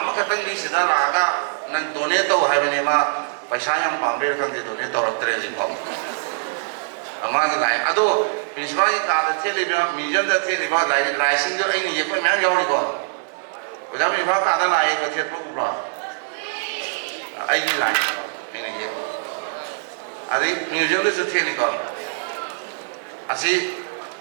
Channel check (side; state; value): left; silent; digital silence